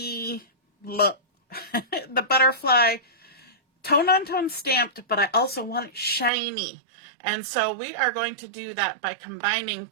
the Butterfly tone-on-tone stamped, but I also want it shiny. And so we are going to do that by combining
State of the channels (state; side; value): drops out; left; at 6.3 s